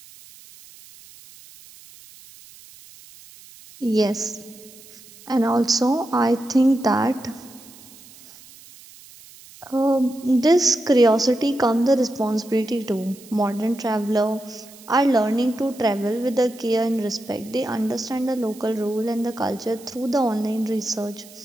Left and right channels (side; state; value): right; noise; hiss, 21 dB below the sound